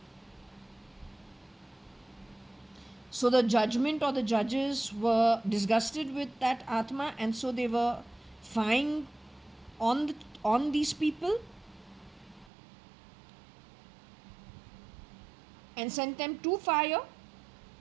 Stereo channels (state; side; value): drops out; left; at 12.5 s